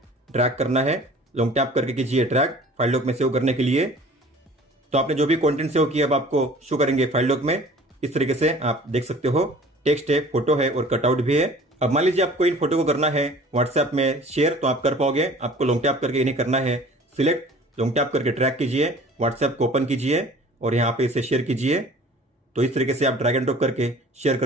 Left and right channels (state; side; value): normal; both; correlation 0.47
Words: ड्रैग करना है, लॉन्ग टैप करके कीजिए ड्रैग फाइल लॉक में सेव करने के लिए। तो आपने जो भी कंटेंट सेव किया अब आपको शो करेंगे फाइल लॉक में इस तरीके से, आप देख सकते हो टेक्स्ट है, फोटो है और कटआउट भी है। अब मान लीजिए आपको इन फोटो को करना है व्हाट्सएप में शेयर, तो आप कर पाओगे। आपको लॉन्ग टैप करके इन्हें करना है सिलेक्ट, लॉन्ग टैप करके ट्रैक कीजिए, व्हाट्सएप को ओपन कीजिए और यहाँ पे इसे शेयर कीजिए। तो इस तरीके से आप ड्रैग एंड ड्रॉप करके शेयर